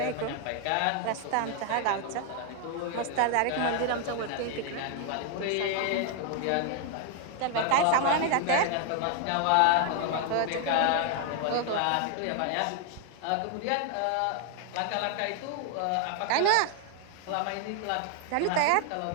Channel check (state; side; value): different; both; correlation 0.00